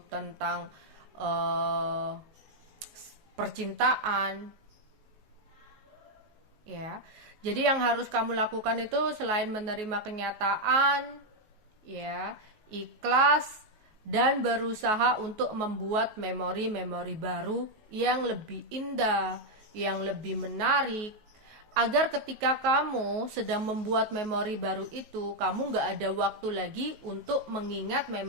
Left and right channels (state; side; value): late; left; 19 ms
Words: tentang percintaan. Ya, jadi yang harus kamu lakukan itu selain menerima kenyataan, ya, ikhlas dan berusaha untuk membuat memori-memori baru yang lebih indah, yang lebih menarik, agar ketika kamu sedang membuat memori baru itu, kamu nggak ada waktu lagi untuk mengingat